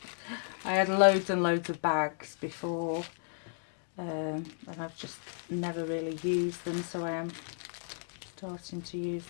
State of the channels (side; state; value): right; silent; digital silence